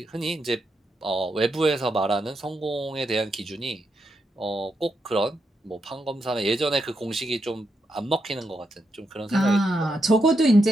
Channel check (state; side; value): normal; both; correlation 0.83